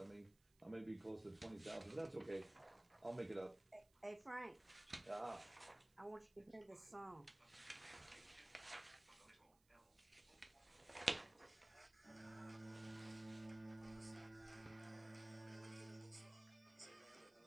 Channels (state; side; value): noise; right; hiss, 30 dB below the sound